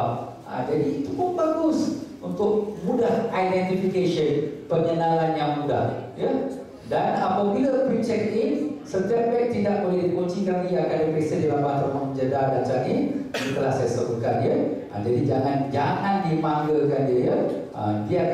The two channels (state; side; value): identical; both; correlation 1.00